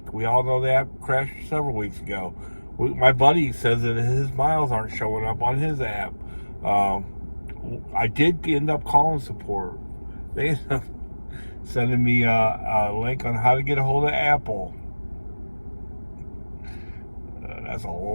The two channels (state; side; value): inverted; both; correlation -1.00